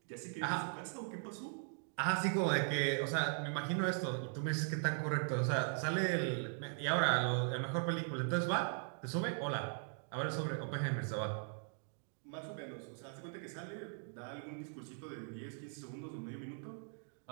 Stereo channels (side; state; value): left; silent; 51 dB below the other